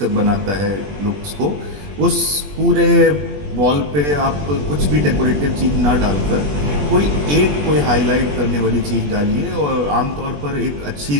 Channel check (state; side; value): late; left; 21 ms